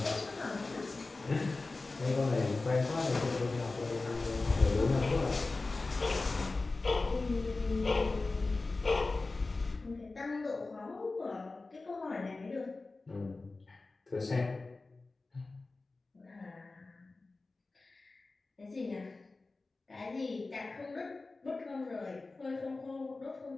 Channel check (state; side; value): quieter; right; 3.5 dB